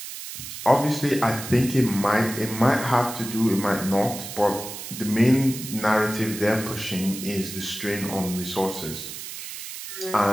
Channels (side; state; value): right; noise; hiss, 9 dB below the sound